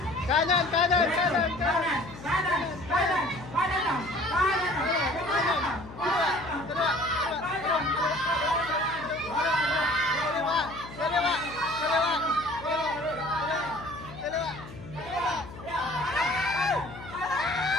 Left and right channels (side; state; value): left; noise; hum, 15 dB below the sound